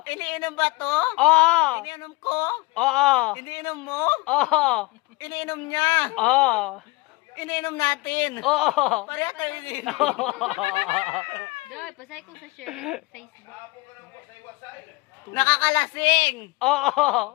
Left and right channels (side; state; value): right; quieter; 23.5 dB